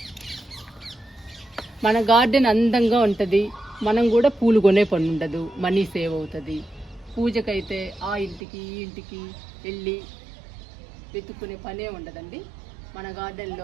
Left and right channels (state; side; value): drops out; left; at 8.4 s